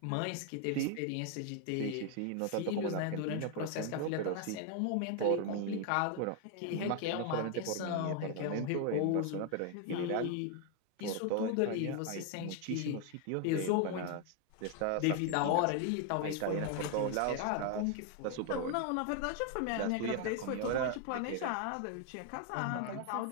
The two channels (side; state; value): both; different; correlation 0.00